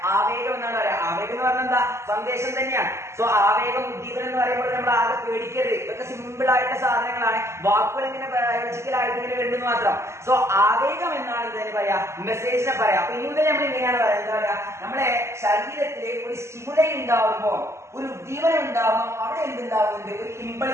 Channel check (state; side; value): late; left; 0.13 ms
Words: ആവേഗം എന്നാണ് പറയാ. ആവേഗം എന്ന് പറഞ്ഞാൽ എന്താ? സന്ദേശം തന്നെയാണ്. സോ ആവേഗം, ഉദ്ദീപനം എന്ന് പറയുമ്പോൾ നമ്മൾ ആകെ പേടിക്കരുത്. ഇതൊക്കെ സിമ്പിൾ ആയിട്ടുള്ള സാധനങ്ങളാണ്. വാക്കുകൾ ഇങ്ങനെ ബയോളജിക്കൽ ആയിട്ട് ഇങ്ങനെ വേണ്ടെന്ന് മാത്രം. സോ ആവേഗം എന്നാണ് ഇതിനെ പറയാ, മെസ്സേജിനെ പറയാം. അപ്പൊ ഇനി മുതൽ നമ്മൾ ഇങ്ങനെയാണ് പറയാം, എന്താ പറയാ, നമ്മുടെ ശരീരത്തില് ഒരു സ്റ്റിമുലൈ ഉണ്ടാവുമ്പോ, ഒരു ഉദ്ദീപനം ഉണ്ടാവുമ്പോൾ അവിടെ എന്തുണ്ടാവുന്നുണ്ട്? ഒരു